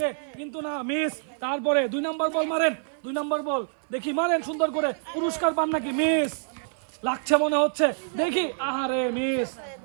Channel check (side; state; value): left; silent; digital silence